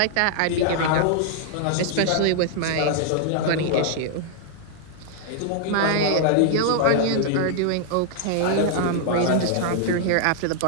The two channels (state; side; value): different; both; correlation -0.01